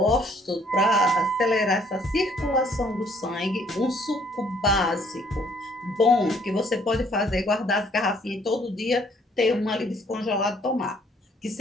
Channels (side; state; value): both; normal; correlation 0.63